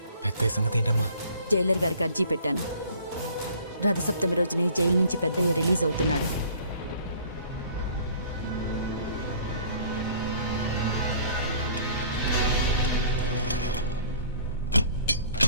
పెద్ద సంగతి ఏంటమ్మా? జైలర్ గారికి అర్జీ పెట్టాను. రథసప్తమి రోజునే జైలు నుంచి పెద్దయ్య రిలీజ్ అవుతున్నాడు.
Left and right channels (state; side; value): inverted; both; correlation -0.52